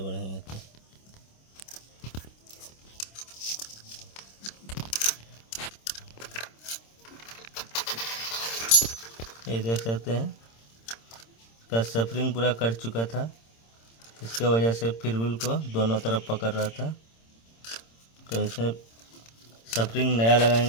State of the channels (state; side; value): late; right; 26 ms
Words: तो ये देख सकते हैं इसका स्प्रिंग पूरा कट चुका था, इसके वजह से फ्री व्हील को दोनों तरफ पकड़ रहा था। तो इसमें स्प्रिंग नया